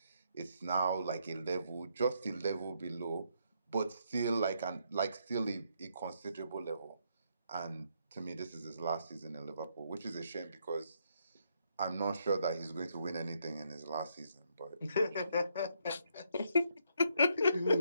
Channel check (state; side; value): inverted; both; correlation -0.75